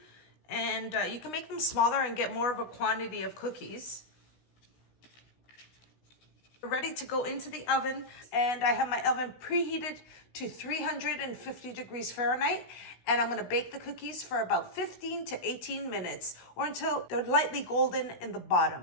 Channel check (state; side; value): late; right; 16 ms